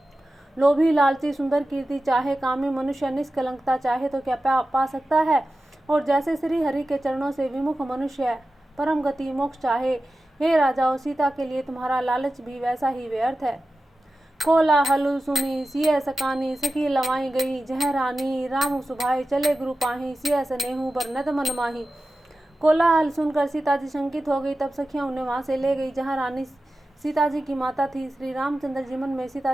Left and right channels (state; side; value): normal; both; correlation 0.94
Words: लोभी लालची सुंदर कीर्ति चाहे, कामी मनुष्य निष्कलंकता चाहे तो क्या पा सकता है। और जैसे श्री हरि के चरणों से विमुख मनुष्य परम गति मोक्ष चाहे, हे राजाओं सीता के लिए तुम्हारा लालच भी वैसा ही व्यर्थ है। कोला हलु सुनी सिय सकानी सखी लवाई गई, जह रानी राम सुभाई चले गुरु पाही, सिय सनेहू बर नद मन माही। कोलाहल सुनकर सीता जी शंकित हो गई। तब सखियां उन्हें वहां से ले गई जहां रानी सीता जी की माता थी। श्री रामचंद्र जी मन में